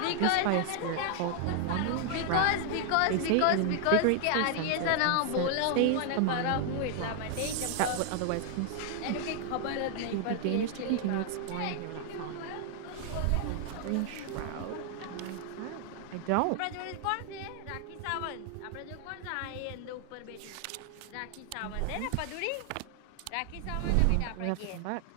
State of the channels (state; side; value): different; both; correlation 0.00